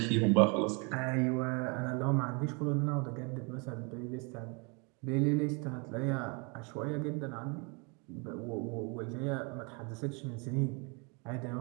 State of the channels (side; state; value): left; quieter; 32.5 dB